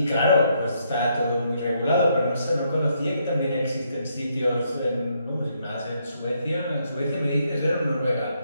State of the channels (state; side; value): inverted; both; correlation -0.74